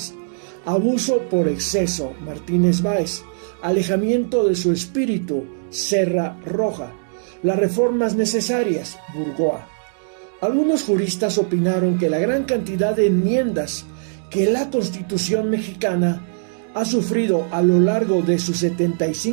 Abuso por exceso, Martínez Báez. Alejamiento de su espíritu, Serra Roja. Las reformas necesarias, Burgoa. Algunos juristas opinaron que la gran cantidad de enmiendas que la Constitución mexicana ha sufrido a lo largo de sus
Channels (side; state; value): left; silent; digital silence